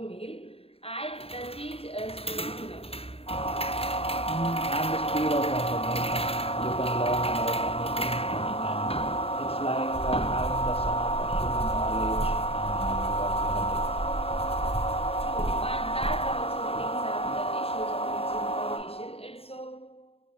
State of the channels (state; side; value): late; right; 0.28 ms